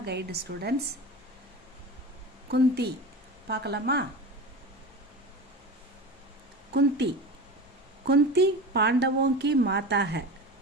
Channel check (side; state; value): both; normal; correlation 0.30